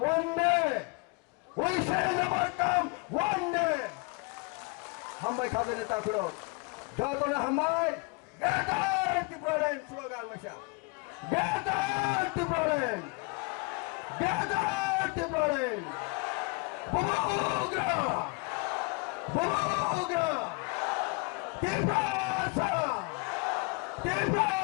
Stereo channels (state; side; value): quieter; right; 28.8 dB